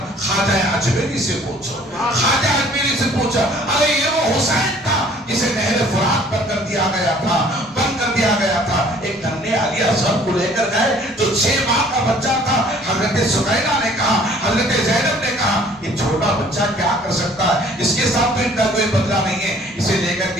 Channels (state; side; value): normal; both; correlation 0.55